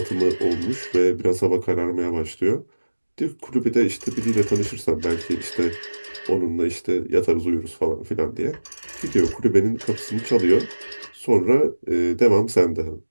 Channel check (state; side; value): inverted; both; correlation -1.00